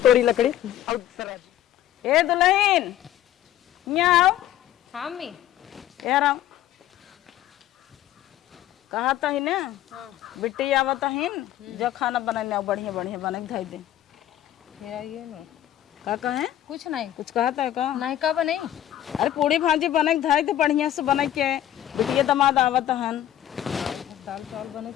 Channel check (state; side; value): quieter; right; 12.3 dB